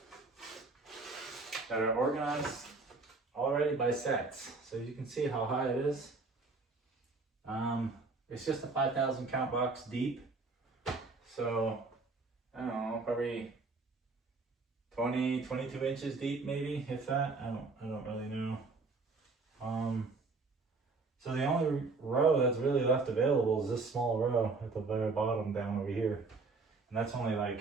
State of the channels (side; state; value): left; quieter; 3.9 dB